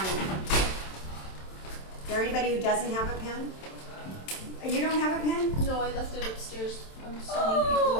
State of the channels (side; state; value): right; late; 27 ms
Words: you. Is there anybody who doesn't have a pen? You don't have a pen? No, I left it upstairs. I'm sending Oh,